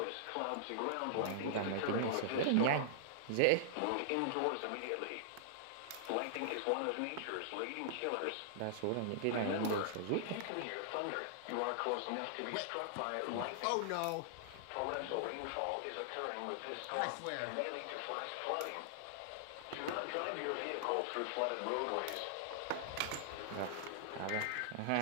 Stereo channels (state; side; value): different; both; correlation -0.01